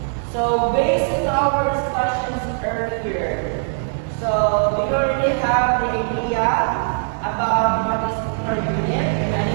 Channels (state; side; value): silent; left; 59 dB below the other